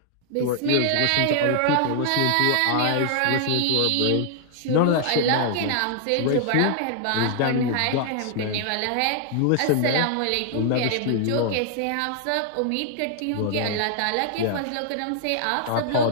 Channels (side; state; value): both; different; correlation -0.01